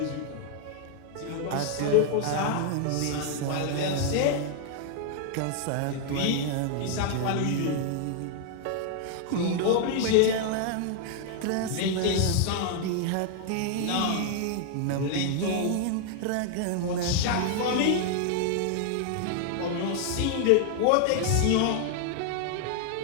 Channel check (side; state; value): both; different; correlation 0.00